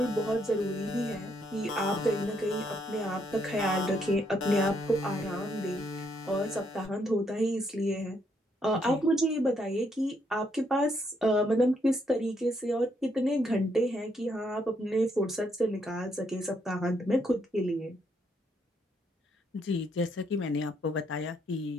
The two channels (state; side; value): normal; both; correlation 0.74